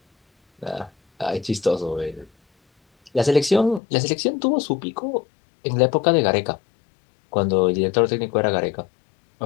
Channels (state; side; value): drops out; right; at 3.8 s